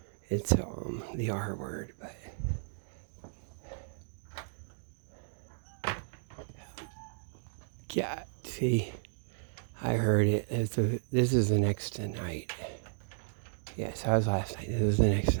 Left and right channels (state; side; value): silent; left; digital silence